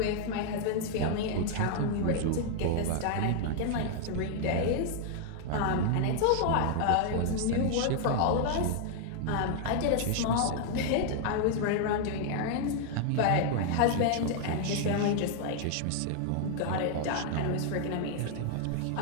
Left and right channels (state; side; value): different; both; correlation 0.00